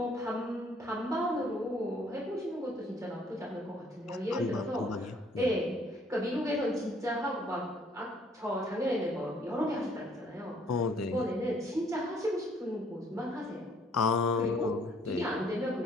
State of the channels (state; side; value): normal; both; correlation 0.63